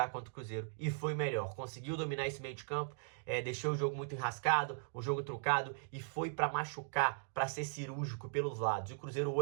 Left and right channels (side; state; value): left; silent; digital silence